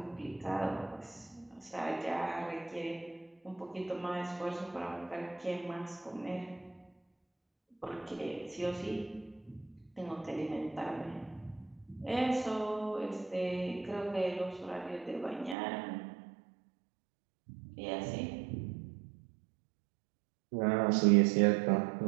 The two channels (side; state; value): left; drops out; at 15.6 s